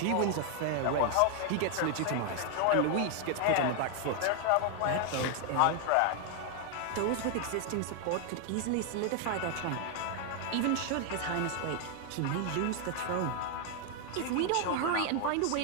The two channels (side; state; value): both; different; correlation 0.00